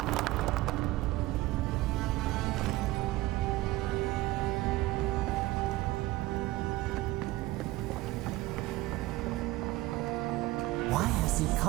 Why has he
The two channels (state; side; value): quieter; left; 18.3 dB